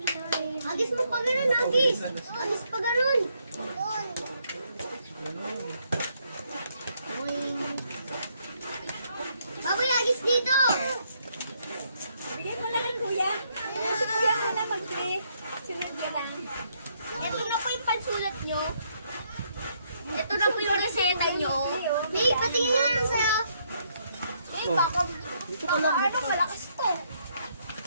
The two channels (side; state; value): both; inverted; correlation -0.73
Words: Agis mo pa ganun, Agis. Agis pa ganun. Baboy, Agis dito. Bigyan ko lang ng kuya. Si kuya ko na mag-play. Sunod yan lang. Ito na po yung pansulat nyo. Ito na po yung reseta nyo. May, patingin nga lang sa'yo. Eh, baka ano, malakas to.